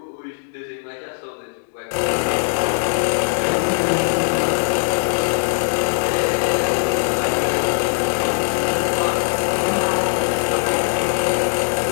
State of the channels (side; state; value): right; silent; 60 dB below the other